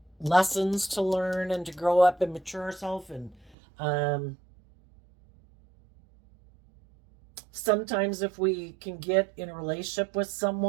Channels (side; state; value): left; drops out; at 3.6 s